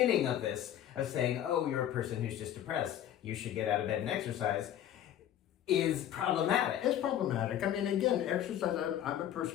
of this, of saying, oh, you're a person who's just depressed, you should get out of bed and exercise, is problematic. It's problematic. I mean, again, exercise, I'm a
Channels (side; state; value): right; quieter; 11.1 dB